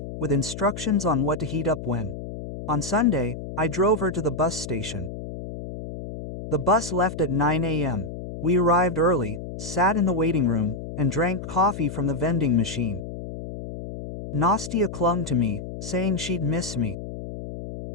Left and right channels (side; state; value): left; noise; hum, 9 dB below the sound